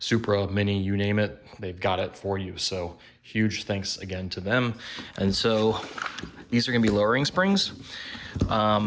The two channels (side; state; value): both; identical; correlation 1.00